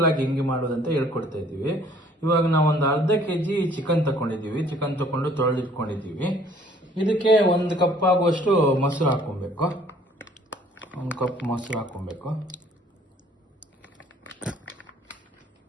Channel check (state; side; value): normal; both; correlation 0.57